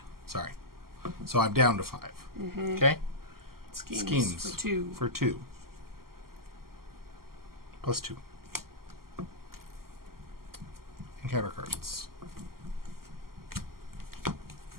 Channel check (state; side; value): late; left; 0.92 ms